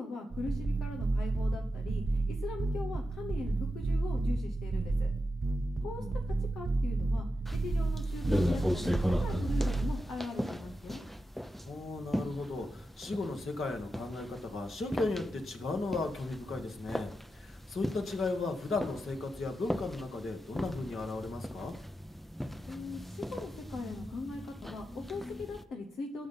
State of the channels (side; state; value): both; normal; correlation 0.89